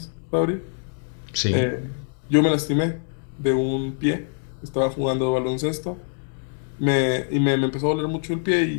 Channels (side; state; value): right; silent; digital silence